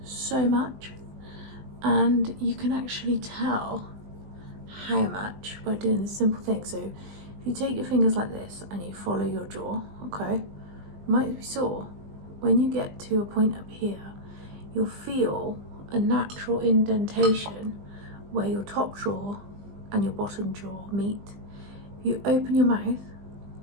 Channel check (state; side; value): late; left; 20 ms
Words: so much, and you can actually tell how much by doing this simple thing. So if you take your fingers like this and you follow your jaw, okay, it might be sore. When you get to a point up here, you'll feel a natural indentation where your top jaw and your bottom jaw meet. If you open your mouth,